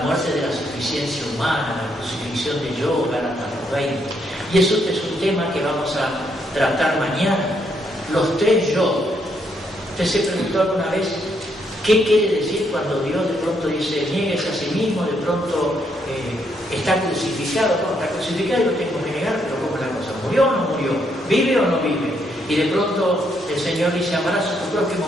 de la suficiencia humana, la crucifixión de yo, Gálatas 20. Y eso es un tema que vamos a tratar mañana. Los tres yo. ¿Usted se preguntó alguna vez qué quiere decir cuando Dios de pronto dice niéguese a sí mismo, de pronto está crucificado? No, está crucificado y lo tengo que negar, pero ¿cómo es la cosa? ¿Murió o no murió? ¿Vive o no vive? Y de pronto el Señor dice amarás a tu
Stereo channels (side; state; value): both; normal; correlation 0.75